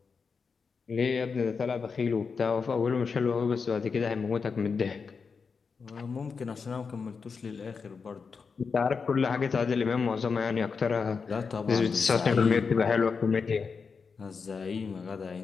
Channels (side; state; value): right; quieter; 5.3 dB